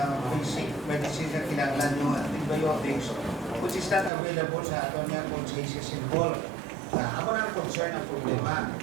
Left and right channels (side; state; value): left; drops out; at 4.1 s